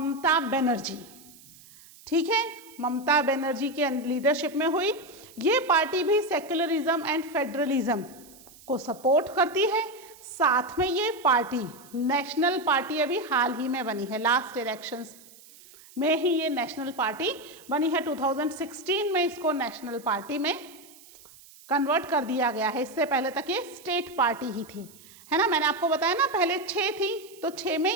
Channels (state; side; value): noise; right; hiss, 22 dB below the sound